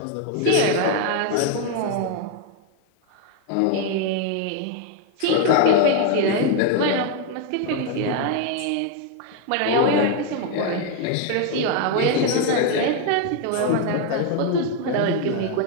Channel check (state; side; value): different; both; correlation 0.01